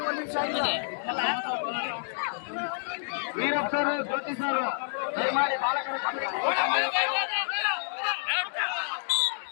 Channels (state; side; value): silent; right; digital silence